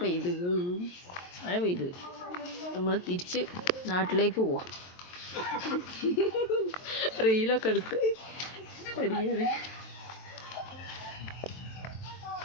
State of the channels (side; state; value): right; late; 23 ms